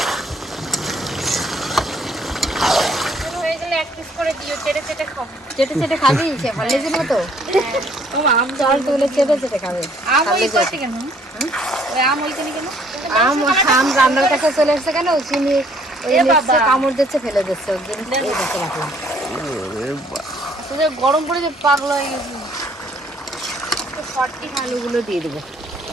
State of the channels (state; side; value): normal; both; correlation 0.62